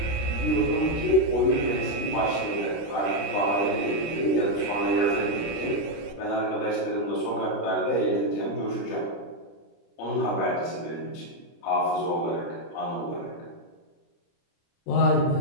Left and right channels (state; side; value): late; right; 29 ms